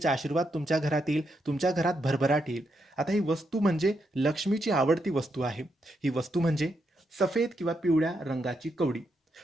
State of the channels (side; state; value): both; normal; correlation 0.81